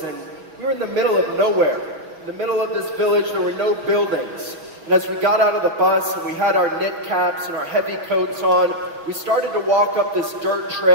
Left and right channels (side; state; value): left; late; 6.3 ms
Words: And we were in the middle of nowhere. In the middle of this village, there were no buildings. And as we got out of the bus and we had our knit caps and our heavy coats on, we started to walk up this dirt